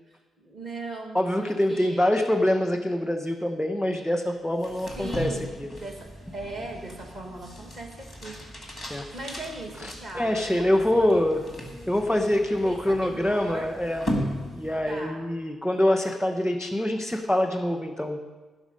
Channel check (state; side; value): normal; both; correlation 0.95